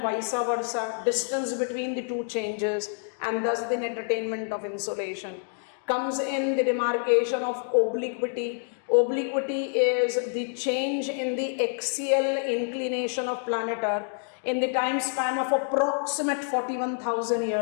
vice versa, distance between the two changes, and thus the net attainment of insolation. Comes in the demarcation of obliquity. Obliquity is the change in the axial inclination of planet Earth in the time span of approximate 41,000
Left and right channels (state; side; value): silent; right; 60 dB below the other